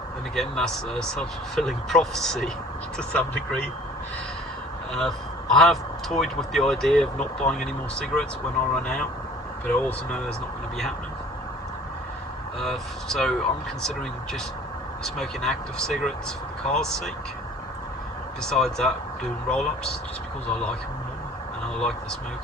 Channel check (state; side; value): normal; both; correlation 0.49